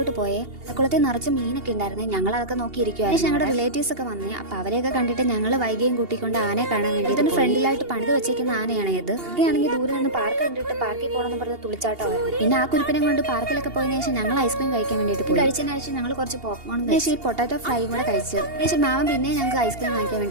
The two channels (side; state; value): left; late; 2.8 ms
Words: പോയേ. അമ്പലക്കുളത്തിൽ നിറച്ച് മീനൊക്കെ ഉണ്ടായിരുന്നു. ഞങ്ങൾ അതൊക്കെ നോക്കിയിരിക്കുവായിരുന്നു. ഞങ്ങളുടെ റിലേറ്റീവ്സ് ഒക്കെ വന്നേ. അപ്പൊ അവരെയൊക്കെ കണ്ടിട്ട് ഞങ്ങൾ വൈകിയും കൂട്ടിക്കൊണ്ട് ആനയെ കാണാൻ വേണ്ടി ഇതിന് ഫ്രണ്ടിലായിട്ട് പണിത് വെച്ചേക്കുന്ന ആനയാണ് ഇത്. ഇതൊക്കെയാണെങ്കിൽ ദൂരെ നിന്ന് പാർക്ക് കണ്ടിട്ട് പാർക്കിൽ പോകണമെന്ന് പറഞ്ഞ് തുളിച്ചാട്ടമായിരുന്നു. പിന്നെ ആ കുരിപ്പിനെ കൊണ്ട് പാർക്കിലൊക്കെ പോയതിനു ശേഷം ഞങ്ങൾ ഐസ്ക്രീം കഴിക്കാൻ വേണ്ടിയിട്ട് പോയി. കഴിച്ചതിന് ശേഷം ഞങ്ങൾ കുറച്ച് പോപ്കോൺ കഴിച്ചു. ഈ പൊട്ടാറ്റോ ഫ്രൈയും കൂടെ കഴിച്ചു. ശേഷം മാമൻ പിന്നെ ഞങ്ങൾക്ക് ഐസ്ക്രീം വാങ്ങിക്കാൻ